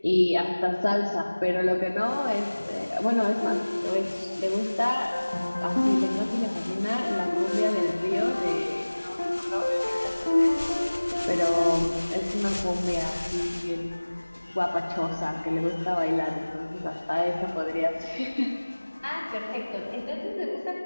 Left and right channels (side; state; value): both; inverted; correlation -1.00